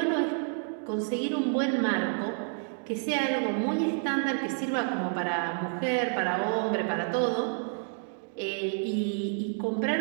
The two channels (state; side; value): silent; left; 58 dB below the other